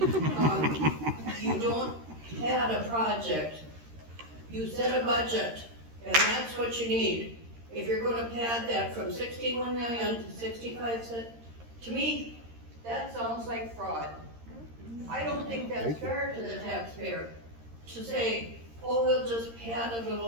You don't add a project. You set a budget, and that's what you need. If you're going to pad that from 61 million to 65 cents, to me, that sounds like fraud. I don't think that's fair to the taxpayer to say, oh, we'll just pad a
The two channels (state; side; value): late; left; 13 ms